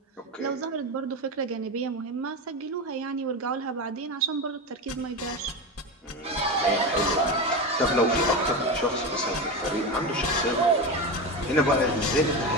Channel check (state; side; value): normal; both; correlation 0.20